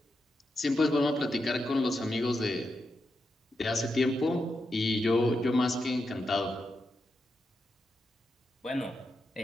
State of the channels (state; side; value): normal; both; correlation 0.86